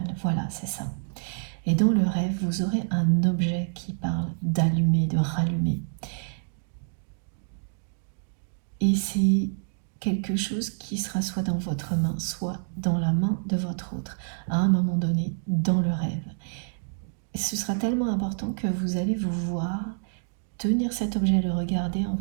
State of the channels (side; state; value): left; silent; digital silence